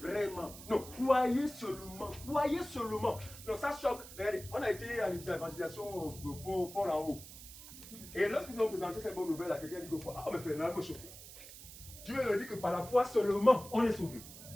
Non, croyez seulement. Croyez seulement. Non, ça choque. Regardez, on a été à l'évangélisation pour en haut. Et lorsque nous avons présenté cette bonne nouvelle à quelqu'un, il dit que, ah, mais Fernand me choquer. Dieu me dit que par la foi seulement, on est sauvé.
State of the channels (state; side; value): noise; right; hiss, 15 dB below the sound